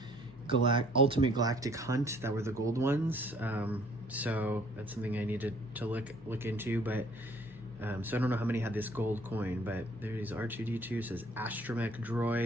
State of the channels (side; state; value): both; normal; correlation 0.59